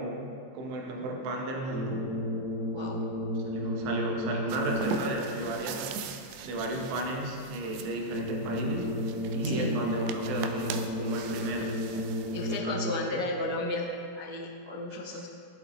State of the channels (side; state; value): left; late; 23 ms